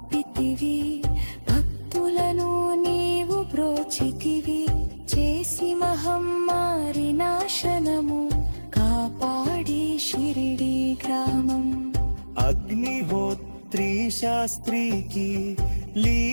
కాచితివి భక్తులను నీవు బ్రోచితివి చేసి మహమ్మారి నాశనము కాపాడి షిరిడి గ్రామం అగ్నిహోత్రి శాస్త్రికి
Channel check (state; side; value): inverted; both; correlation -1.00